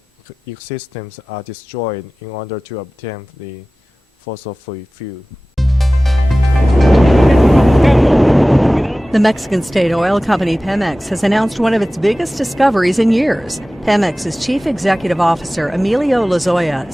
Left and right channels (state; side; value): normal; both; correlation 0.97